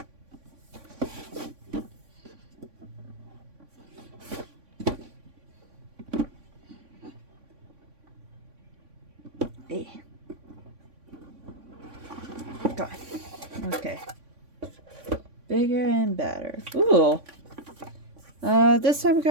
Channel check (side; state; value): left; late; 3.5 ms